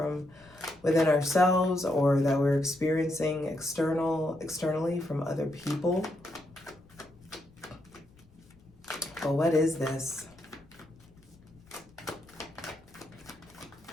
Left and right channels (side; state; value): left; noise; rumble, 29 dB below the sound